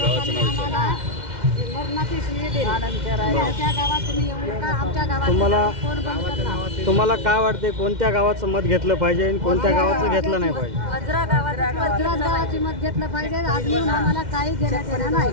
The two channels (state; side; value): late; left; 2.1 ms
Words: आम्हाला मरणाची शिवी दिली. आमच्या गावात तुम्ही येऊ नका. आमच्या गावात कोण बंद करणार? तुम्हाला काय वाटते कोणत्या गावाचं मत घेतलं पाहिजे आणि कोणत्या गावाचं घेतलं नाही पाहिजे? वज्रा गावाची मत घेतलं पाहिजे. आजनी आम्हाला काही घेण्यात येणार